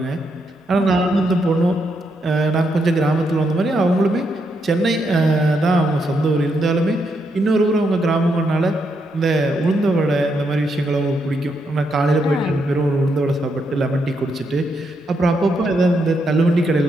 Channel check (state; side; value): normal; both; correlation 0.79